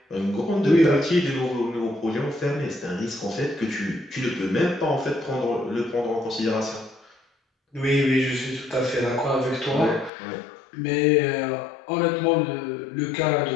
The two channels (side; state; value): right; drops out; at 10.1 s